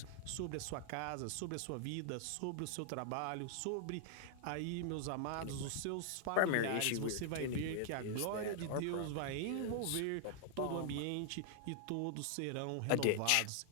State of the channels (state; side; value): different; both; correlation 0.00